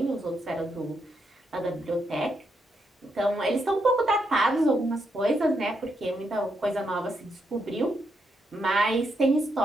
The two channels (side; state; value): both; normal; correlation 0.80